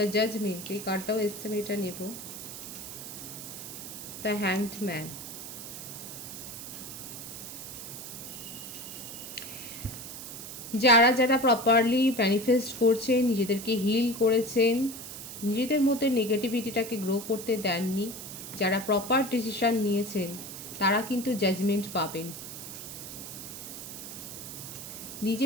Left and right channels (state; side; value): noise; right; hiss, 10 dB below the sound